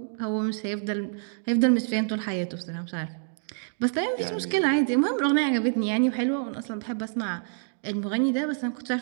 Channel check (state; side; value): silent; left; digital silence